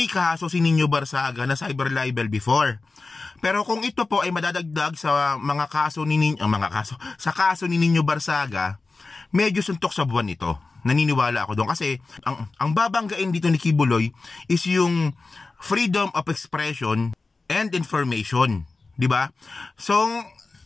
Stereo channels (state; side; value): quieter; right; 3.7 dB